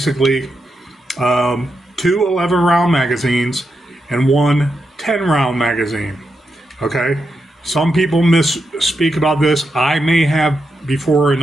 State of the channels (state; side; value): normal; both; correlation 0.85